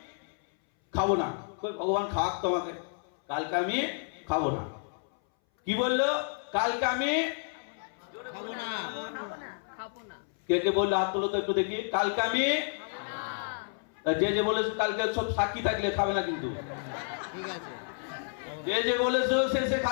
খাবো না, ভগবান খাওয়াক তোমাকে, কালকে আমি খাবো না। কি বললো? কালকে আমি খাবো না। কে কে বললো হাত তোলো তো একটু দেখি। কালকে আমি, যে যে বলেছো কালকে সব সাক্ষী থাকলে খাবে না কিন্তু, ঠিক আছে। যে যে বলেছো সে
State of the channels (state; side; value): silent; right; 58 dB below the other